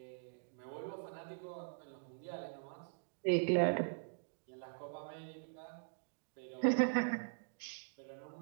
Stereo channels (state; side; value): silent; left; digital silence